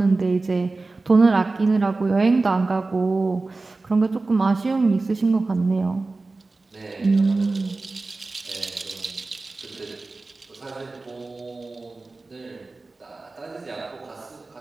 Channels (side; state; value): left; quieter; 3.5 dB